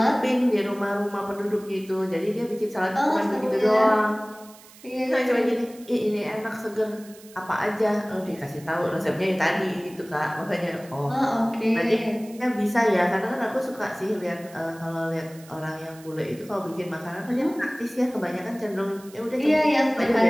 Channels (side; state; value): right; noise; hiss, 22 dB below the sound